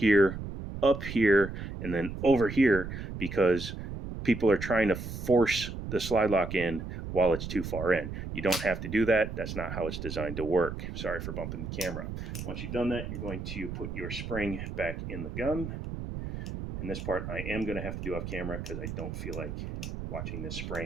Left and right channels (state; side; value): noise; right; rumble, 7 dB below the sound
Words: up here, and then over here, because people are trying to force the slide lock in while it's too far in. You don't have to do that. That's not how it's designed to work. Sorry for bumping the camera. Once you've done that, you're going to put your spring back in the gun. And this part I am going to have to do off camera, because I don't feel like watching this